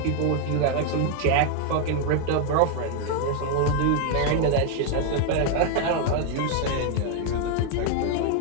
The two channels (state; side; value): different; both; correlation 0.00